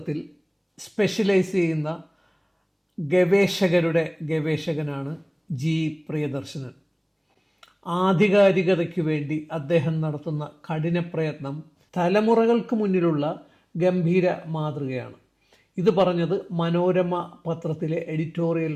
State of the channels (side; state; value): both; identical; correlation 1.00